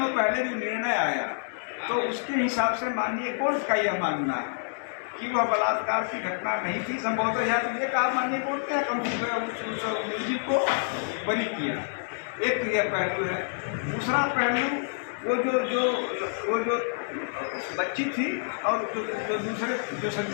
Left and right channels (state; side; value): silent; right; 59 dB below the other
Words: पहले जो निर्णय आया, तो उसके हिसाब से माननीय कोर्ट का यह मानना है कि वह बलात्कार की घटना नहीं थी। संभवतः यह तो ये कहा माननीय कोर्ट ने कम उस मुलजिम को बरी किया। एक तो यह पहलू है। दूसरा पहलू वो जो बच्ची थी और जो दूसरे जो